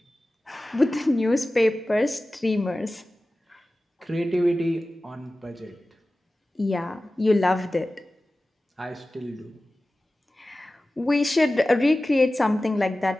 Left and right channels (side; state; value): both; normal; correlation 0.96